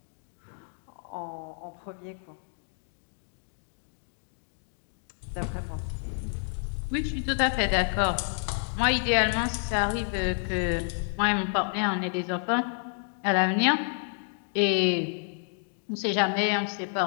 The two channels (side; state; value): right; silent; 58 dB below the other